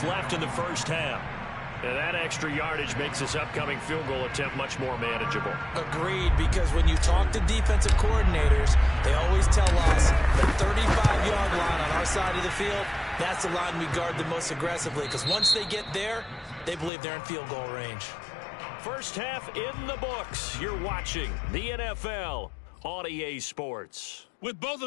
left in the first half. And that extra yardage makes this upcoming field goal attempt much more manageable. Agreed, because when you talk to defensive coordinators, they always tell us the 35-yard line on our side of the field, that's the line we guard the most aggressively, because once they get there, they believe they're in field goal range. First half in the books. You're watching the NFL on EA Sports. With both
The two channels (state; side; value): drops out; right; at 16.9 s